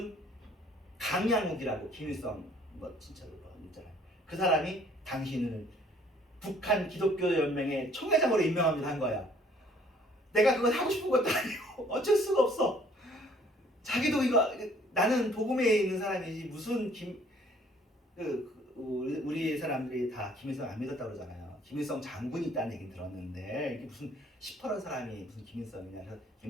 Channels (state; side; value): normal; both; correlation 0.59